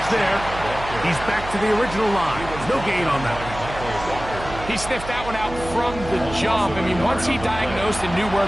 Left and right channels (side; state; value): right; noise; hum, 11 dB below the sound